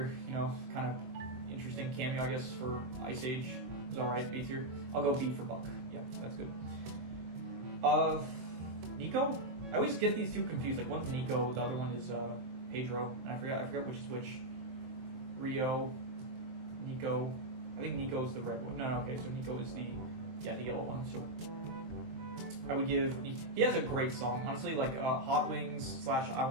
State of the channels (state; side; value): late; left; 23 ms